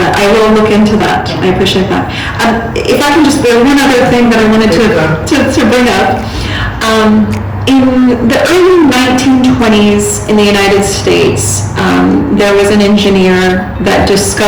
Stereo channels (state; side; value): identical; both; correlation 1.00